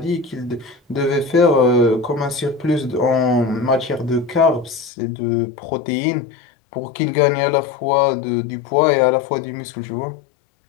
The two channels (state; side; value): drops out; right; at 4.9 s